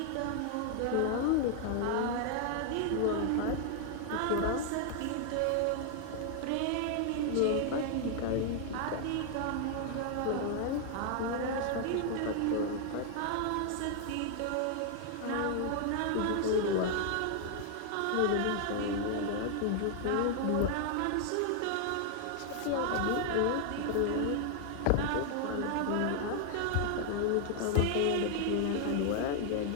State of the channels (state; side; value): different; both; correlation 0.00